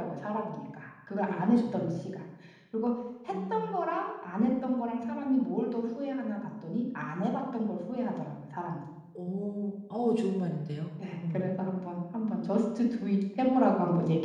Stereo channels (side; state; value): both; identical; correlation 1.00